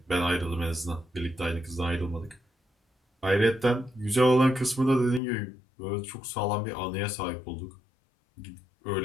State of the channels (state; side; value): drops out; right; at 5.2 s